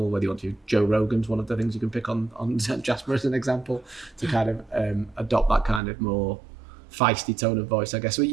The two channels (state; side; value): drops out; left; at 5.8 s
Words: whether you want to. Joe Rogan's one of the things you can pick on Jasper as an example to kind of adopt that kind of more feisty tone of voice, I guess. So